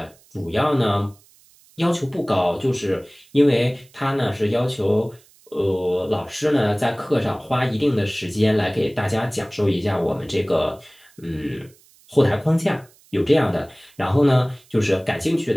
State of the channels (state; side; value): noise; right; hiss, 29 dB below the sound